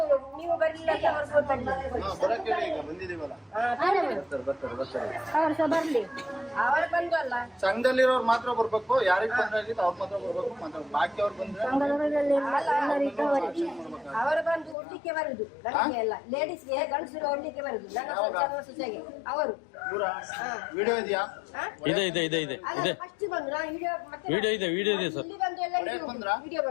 ಬಂದಿದೀವಲ್ಲ. ಸಂಘದಲ್ಲಿರೋರು ಮಾತ್ರ ಬರ್ಬೇಕು. ಯಾರಿಗೆ ತೊಂದರೆ ಆಗಿತ್ತು ಅವ್ರು ಮಾತ್ರ ಬರ್ಬೇಕು. ಮಾತ್ರ ಬಾಕಿ ಅವ್ರು ಬಂದ್ರೆ ಅವರು ಬಂದು ಒಡ್ಲಿಕ್ಕೆ ಬರುದು. ಲೇಡೀಸ್ಗೆ ಗಂಡಸರು ಒಡ್ಲಿಕ್ಕೆ ಬರುದು. ಅವರು ವಿಡಿಯೋ ಇದೆಯಾ? ಇದೆ ಫಸ್ಟ್ ಬಂದ್ರು ವಿಡಿಯೋ ಇದೆ ಸರ್. ವಿಡಿಯೋ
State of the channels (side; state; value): right; drops out; at 14.8 s